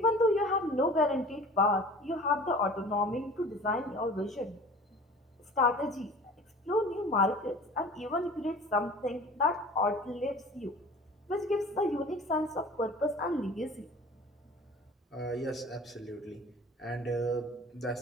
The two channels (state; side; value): normal; both; correlation 0.43